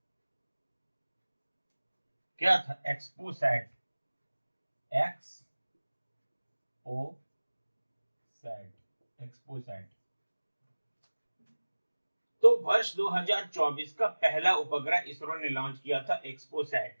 क्या था? एक्सपोसैट। तो वर्ष 2024 का पहला उपग्रह इसरो ने लॉन्च किया था,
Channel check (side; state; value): both; inverted; correlation -1.00